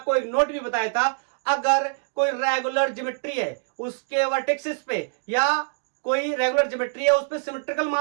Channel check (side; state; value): left; silent; digital silence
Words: एक note भी बताया था, अगर कोई regular geometry है उसके वर्टेक्सेस पे, या कोई रेगुलर ज्योमेट्री है उस पे सिमेट्रिकल